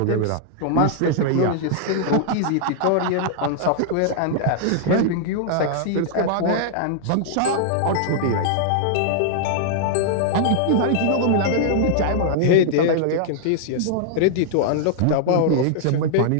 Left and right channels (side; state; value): both; different; correlation -0.01